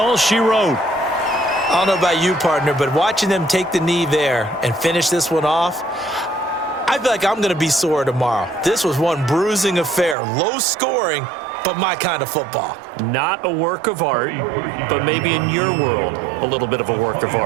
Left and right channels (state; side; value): drops out; left; at 10.2 s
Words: she wrote. I don't know about you, partner, but watching them take the knee there and finish this one off, I feel like I'm going to be sore tomorrow. This was one bruising affair, low scoring, but my kind of football. Not a work of art, but maybe in your world, a little bit of a work of